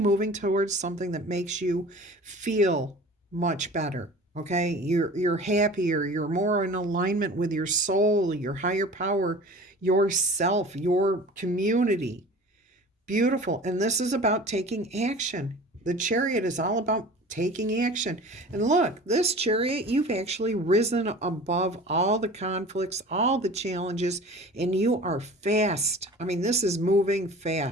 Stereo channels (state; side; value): normal; both; correlation 0.41